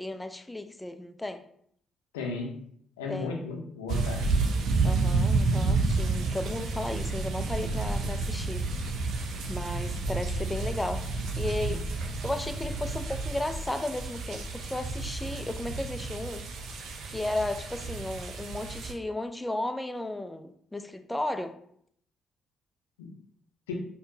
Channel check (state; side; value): normal; both; correlation 0.73